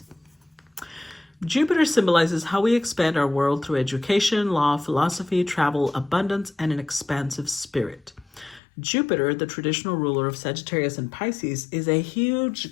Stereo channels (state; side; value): drops out; right; at 8.6 s